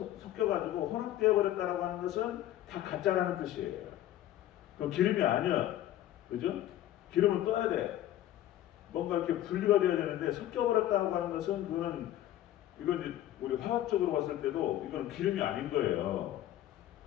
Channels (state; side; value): quieter; right; 13.1 dB